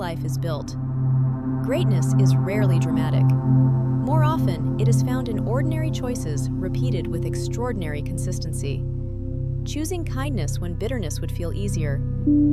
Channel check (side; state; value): both; identical; correlation 1.00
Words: is built. Greatness is rarely dramatic. More often, it is found in ordinary choices repeated with extraordinary consistency. Choosing kindness when bitterness would feel easier.